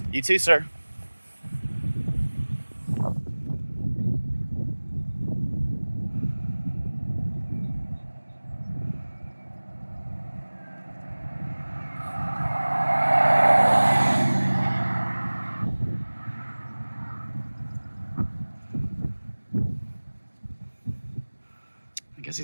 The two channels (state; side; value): inverted; both; correlation -1.00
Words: You too, sir. I guess